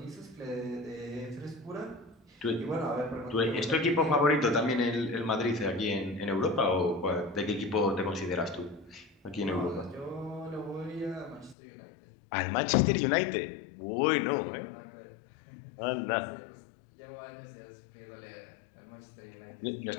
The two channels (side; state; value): right; drops out; at 11.6 s